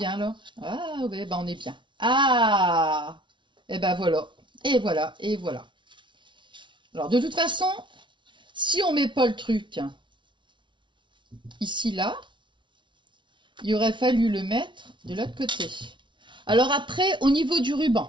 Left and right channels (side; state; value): left; late; 0.24 ms